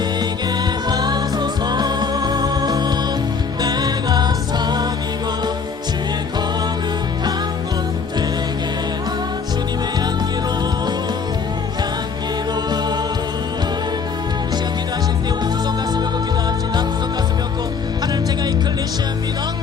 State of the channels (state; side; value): quieter; right; 5.6 dB